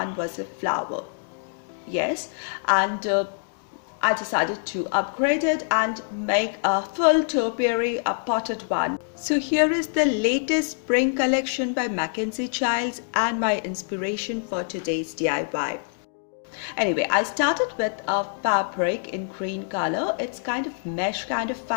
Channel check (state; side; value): silent; right; digital silence